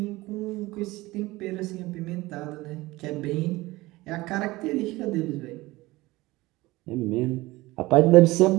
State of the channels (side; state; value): left; quieter; 19.9 dB